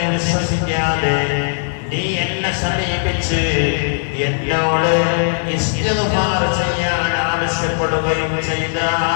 വിശ്വസിക്കാതെ നീ സമീപിച്ച് എന്നോട് ഇസ്തിഗ്ഫാർ ചെയ്യാൻ ആവശ്യപ്പെടുകയും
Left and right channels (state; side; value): silent; right; digital silence